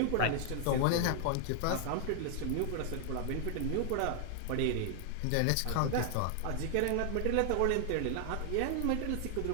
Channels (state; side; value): different; both; correlation 0.00